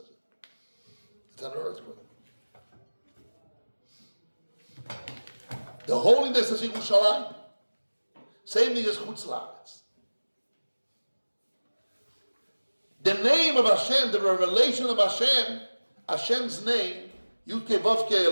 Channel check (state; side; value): inverted; both; correlation -1.00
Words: it's an earthquake. The holiness is Yerushalayim. Same thing as Chutz La'aretz. The name of Hashem, the revelation of Hashem, Hashem's name, Yudke, Vovke,